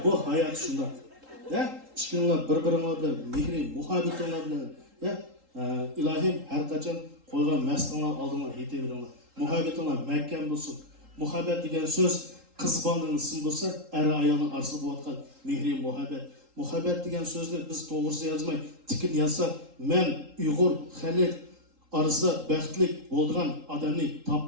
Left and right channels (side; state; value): left; late; 3.8 ms